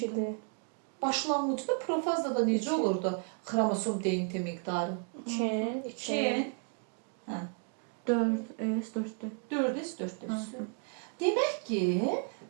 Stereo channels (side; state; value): left; quieter; 39.2 dB